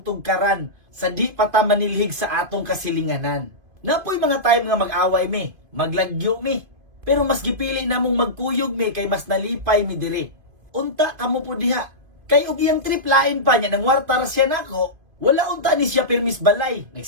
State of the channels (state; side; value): late; left; 2.5 ms